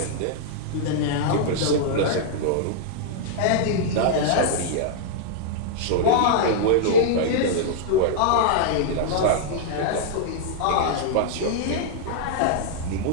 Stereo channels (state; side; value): different; both; correlation -0.01